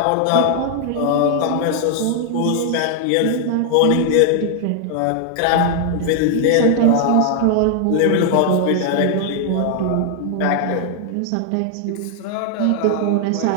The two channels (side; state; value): both; different; correlation 0.00